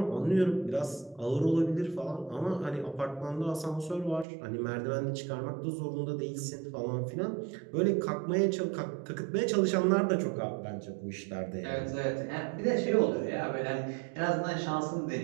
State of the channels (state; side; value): drops out; left; at 4.2 s